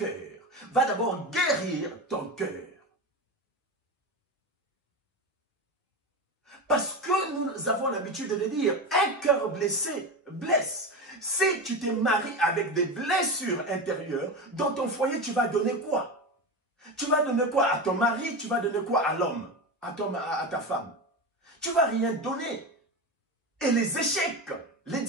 Va d'abord guérir ton cœur. Parce que nous avons l'habitude de le dire, un cœur blessé blesse. Si tu te maries avec des blessures intérieures, dans ton foyer, tu vas donner quoi? Tu vas donner quoi à ton mari? Tu vas donner quoi à l'homme? À ta femme? Tu ne vas rien donner. Et les échecs, les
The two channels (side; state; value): both; normal; correlation 0.21